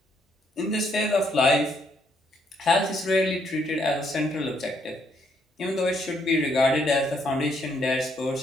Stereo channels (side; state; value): both; normal; correlation 0.71